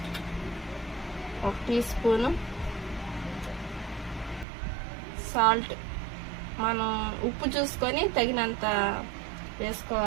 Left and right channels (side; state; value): left; drops out; at 4.5 s